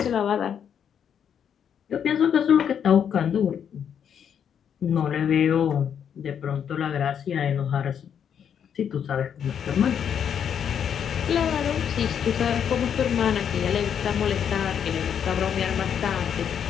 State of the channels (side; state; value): right; quieter; 8.3 dB